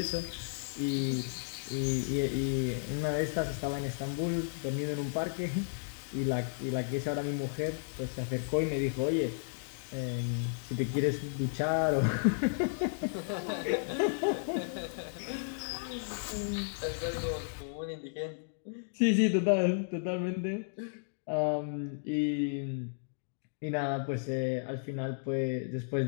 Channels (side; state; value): right; silent; digital silence